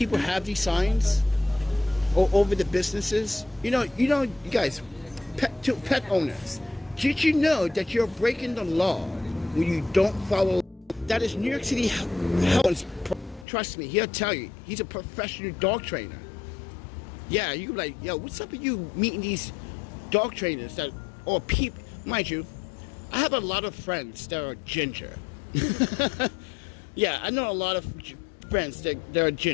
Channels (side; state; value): right; drops out; at 13.5 s